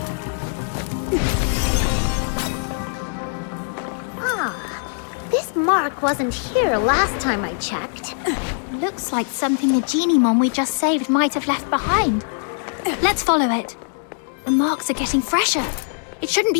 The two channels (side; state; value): right; silent; 64 dB below the other